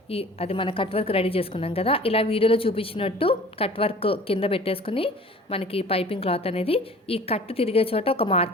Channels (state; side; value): normal; both; correlation 0.46